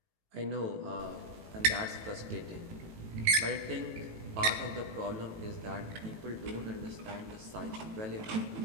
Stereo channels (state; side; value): late; left; 18 ms